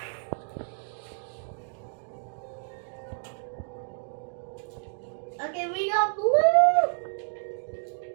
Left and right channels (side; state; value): left; silent; digital silence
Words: Okay, we got blue.